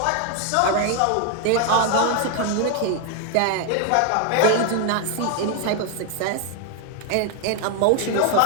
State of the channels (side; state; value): both; different; correlation 0.00